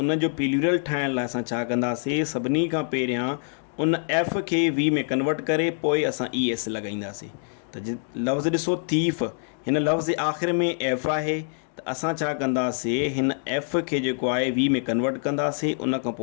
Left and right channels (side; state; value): right; silent; 62 dB below the other